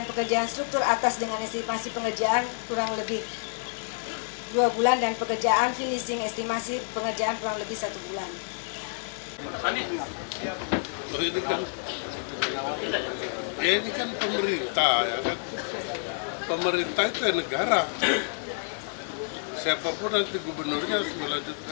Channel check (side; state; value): right; silent; digital silence